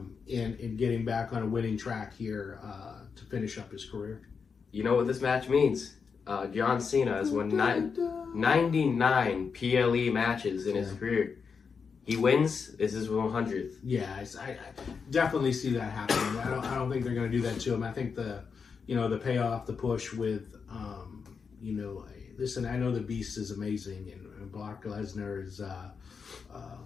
getting back on a winning track here to finish up his career. You know what this match means? John Cena has won 99 PLE matches in his career. He wins. This is 100th. Yeah, I definitely see that happening. I don't think they're going to do that to him. I think the payoff, the push with, listen, I know the Beast is amazing, and Brock Lesnar is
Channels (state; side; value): quieter; right; 5.7 dB